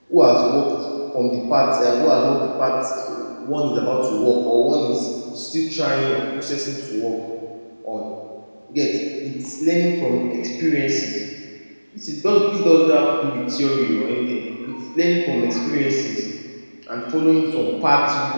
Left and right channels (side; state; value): both; inverted; correlation -1.00